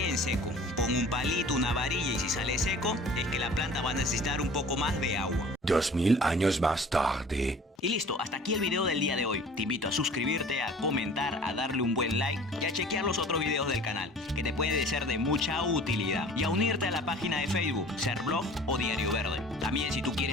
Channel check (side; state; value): both; normal; correlation 0.46